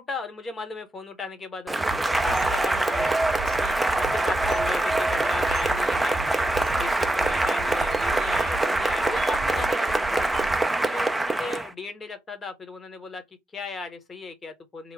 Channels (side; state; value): both; normal; correlation 0.88